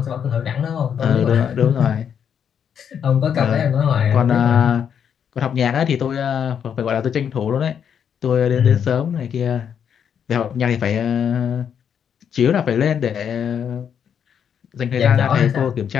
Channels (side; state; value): right; quieter; 8.0 dB